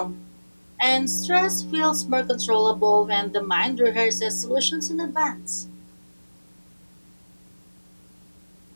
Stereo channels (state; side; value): inverted; both; correlation -1.00